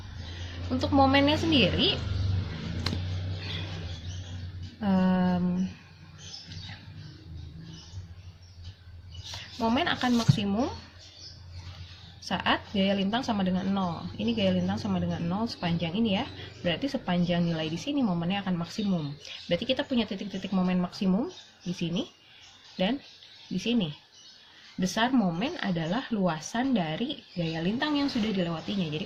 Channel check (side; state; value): both; identical; correlation 1.00